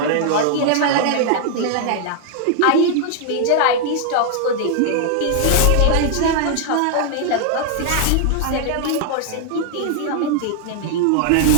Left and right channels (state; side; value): different; both; correlation 0.00